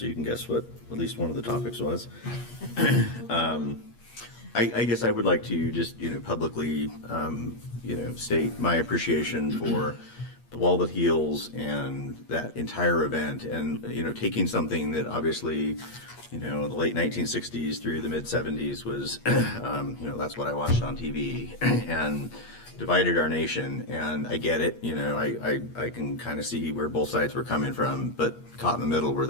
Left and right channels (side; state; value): right; late; 8.4 ms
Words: you can guess what at least one of the topics was. I guess I would like to just, publicly, state my appreciation for the Wall That Heals and that entire event, and, taking something that obviously, the late 1960s through the mid 70s was, that's what I watched on TV, and divided our nation. And I get it, I can kind of see where both sides were coming from, but caught in the middle were